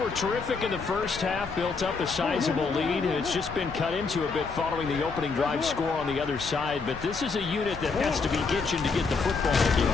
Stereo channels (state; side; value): quieter; right; 4.6 dB